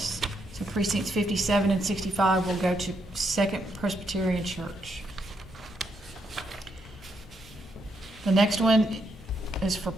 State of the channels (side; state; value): both; normal; correlation 0.78